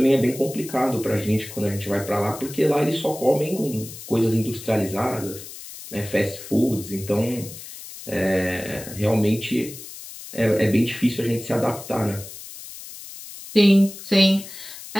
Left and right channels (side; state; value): left; noise; hiss, 14 dB below the sound